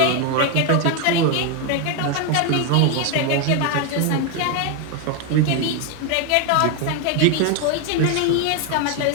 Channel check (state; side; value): different; both; correlation 0.01